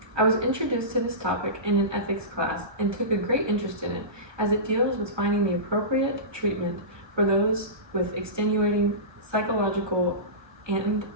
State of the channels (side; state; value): left; late; 1.3 ms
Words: I was introduced to this topic in an ethics class and took a great interest in it, as it deals with finding the appropriate treatment for those with extenuating psychological and